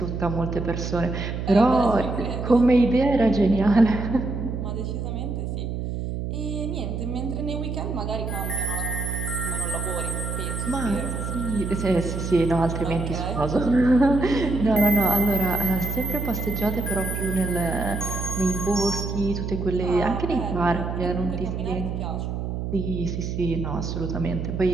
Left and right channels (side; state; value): right; noise; hum, 4 dB below the sound